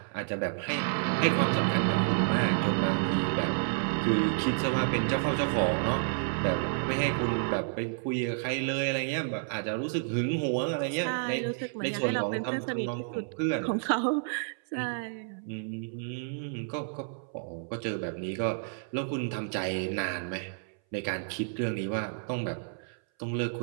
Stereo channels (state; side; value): silent; left; 58 dB below the other